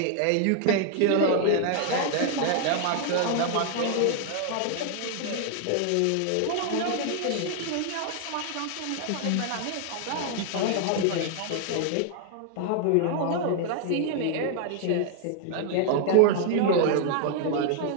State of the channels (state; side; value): different; both; correlation 0.00